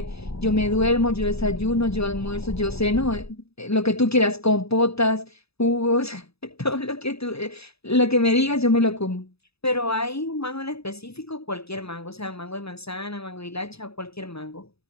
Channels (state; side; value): late; right; 0.78 ms